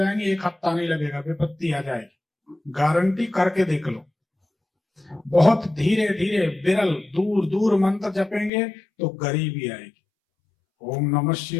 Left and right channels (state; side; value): drops out; right; at 8.5 s